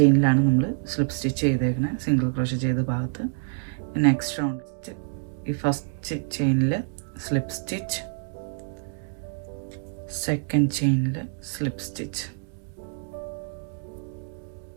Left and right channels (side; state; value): left; silent; digital silence